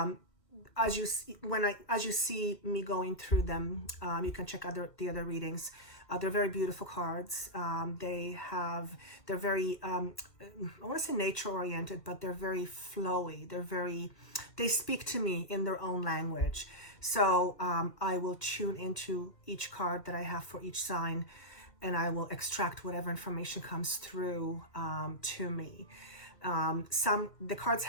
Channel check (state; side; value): late; right; 1.5 ms